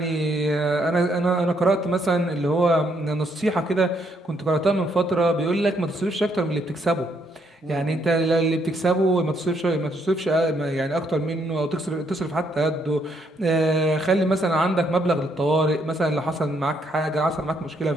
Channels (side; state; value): both; normal; correlation 0.73